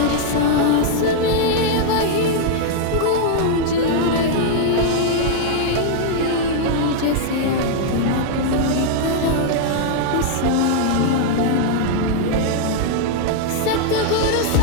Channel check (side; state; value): both; different; correlation -0.01